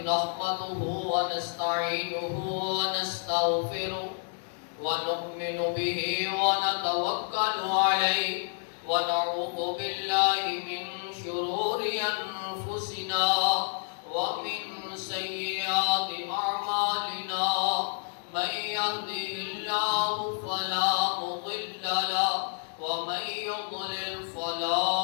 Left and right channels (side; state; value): right; silent; digital silence